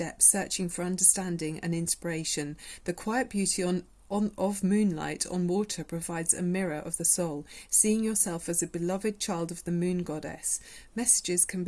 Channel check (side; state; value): both; identical; correlation 1.00